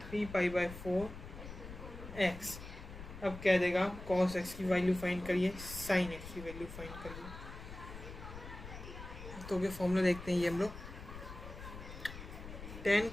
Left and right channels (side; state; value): left; noise; rumble, 12 dB below the sound